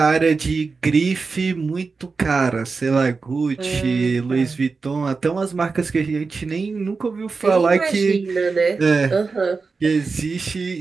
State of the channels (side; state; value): left; quieter; 4.4 dB